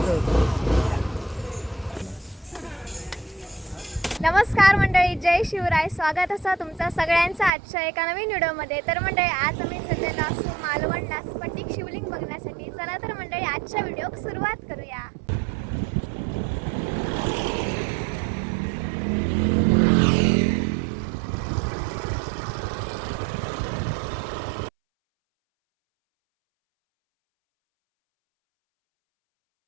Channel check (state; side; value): drops out; left; at 7.5 s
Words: नमस्कार मंडळी, जय शिवराय. स्वागत असं तुमचं सगळ्यांचं आजच्या एका नवीन व्हिडिओमध्ये. तर मंडळी आज आम्ही सध्याला असू मालवणला स्फटिक शिवलिंग बघण्यासाठी. चला तर मंडळी आजच्या व्हिडिओ सुरुवात करूया.